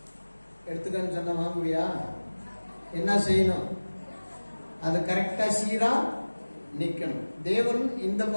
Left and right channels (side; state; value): both; inverted; correlation -1.00